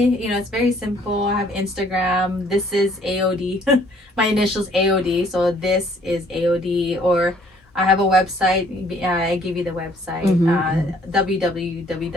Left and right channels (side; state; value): both; normal; correlation 0.61